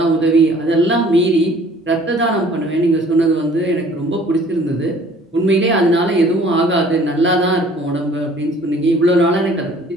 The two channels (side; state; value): both; normal; correlation 0.53